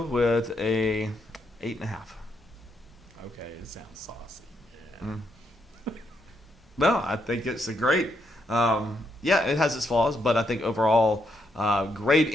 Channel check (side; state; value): both; normal; correlation 0.78